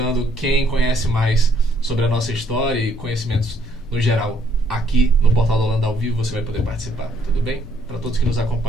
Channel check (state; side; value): normal; both; correlation 0.68